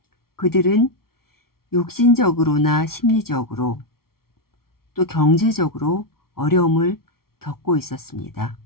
그들은 육신적으로나 심리적으로 또 경제적으로 어려움을 겪고 있었습니다.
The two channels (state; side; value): late; right; 0.94 ms